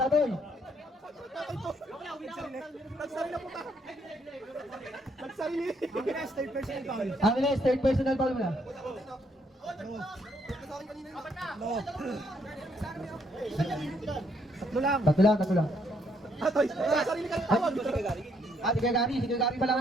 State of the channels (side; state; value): both; normal; correlation 0.71